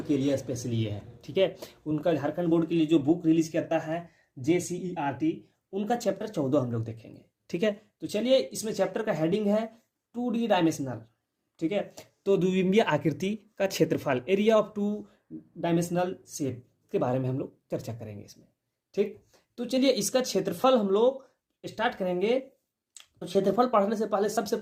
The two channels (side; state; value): both; identical; correlation 1.00